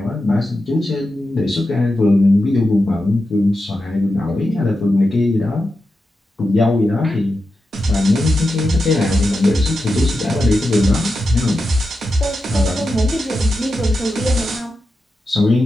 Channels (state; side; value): normal; both; correlation 0.89